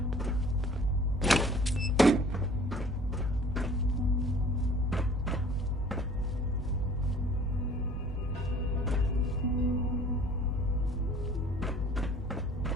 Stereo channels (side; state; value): both; normal; correlation 0.51